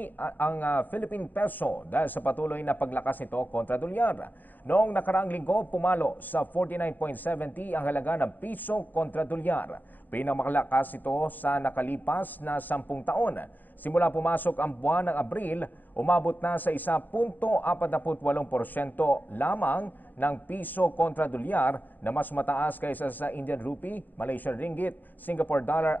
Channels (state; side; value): late; right; 0.088 ms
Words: ang Philippine Peso dahil sa patuloy na paglakas nito kontra dolyar. Noong nakaraang linggo, pumalo sa 49.70 ang halaga ng piso kontra dolyar. Pinamakalakas ito sa nakalipas na 10 taon. Simula pumasok ang buwan ng Abril, umabot na sa 1.48% lamang ng piso kontra dolyar na mas mataas kaysa sa Indian rupee, Malaysian ringgit, Singapore dollar